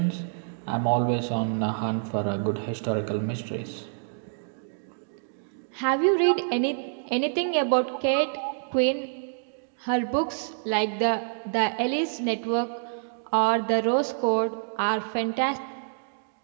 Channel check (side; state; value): left; silent; digital silence